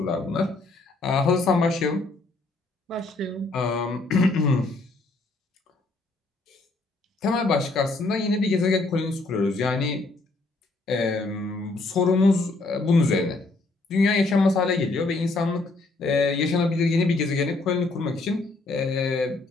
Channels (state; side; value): quieter; right; 3.3 dB